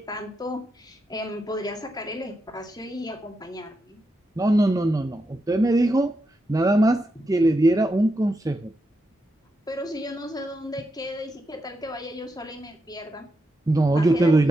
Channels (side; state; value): both; normal; correlation 0.85